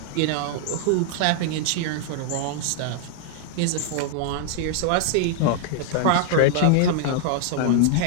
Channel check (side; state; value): both; different; correlation -0.01